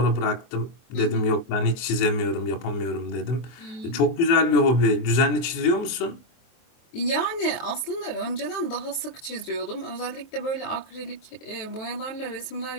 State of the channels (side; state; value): right; late; 23 ms